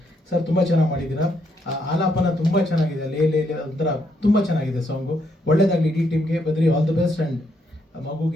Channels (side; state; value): both; normal; correlation 0.75